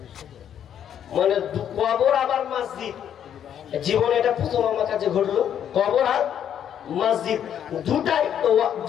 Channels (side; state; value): right; quieter; 9.4 dB